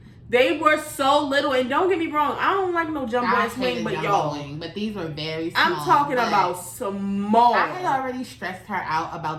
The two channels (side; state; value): both; identical; correlation 1.00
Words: They were so little. And don't get me wrong, I don't like no jumbo ass wing, but y'all. But these were very small. I'm talking about small. I had already stressed her out